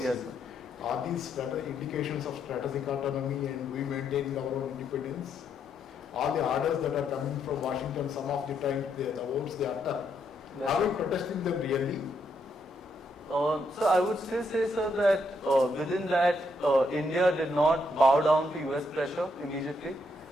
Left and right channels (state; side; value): normal; both; correlation 0.76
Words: Are these indications of strategic autonomy and we maintaining our own independence? All the orders that are coming from Washington, some of the time the words they utter. Yes. Are we protesting them really? So I would still say, sir, that within that India did not bow down to US pressure immediately,